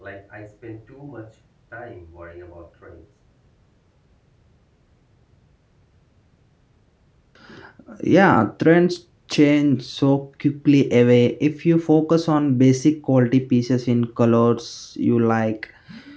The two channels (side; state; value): both; identical; correlation 1.00